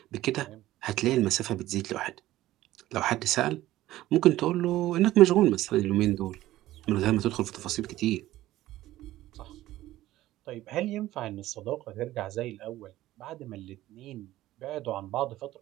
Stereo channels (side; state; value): left; quieter; 15.4 dB